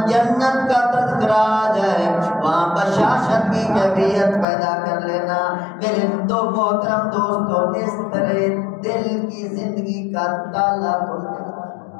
جنت کا تذکرہ آ جائے وہاں بشاشت کی کیفیت پیدا کر لینا۔ میرے دو محترم دوستو، اس طرح دل کی زندگی کا تالا کھل جائے۔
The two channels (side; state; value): right; drops out; at 4.5 s